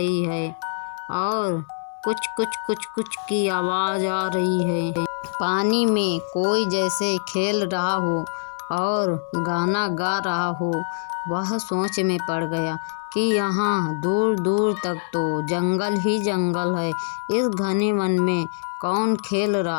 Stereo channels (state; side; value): silent; right; digital silence